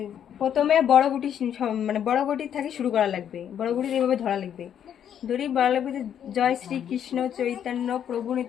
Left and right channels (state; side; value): quieter; right; 9.2 dB